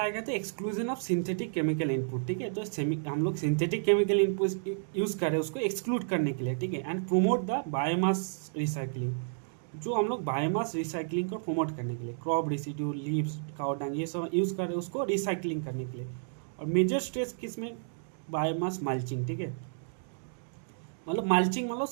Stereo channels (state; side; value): silent; left; digital silence